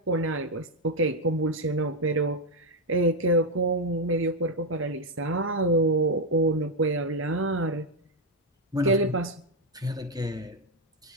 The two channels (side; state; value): both; normal; correlation 0.03